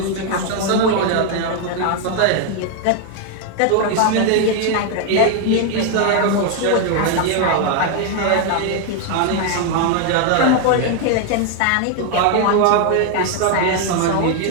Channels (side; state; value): both; different; correlation 0.01